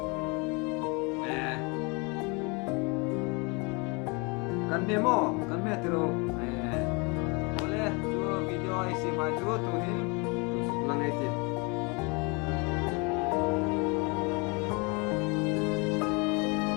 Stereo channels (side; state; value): right; quieter; 30.3 dB